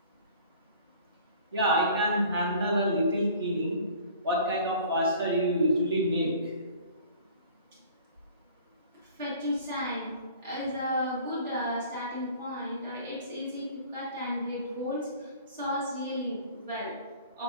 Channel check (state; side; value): inverted; both; correlation -0.48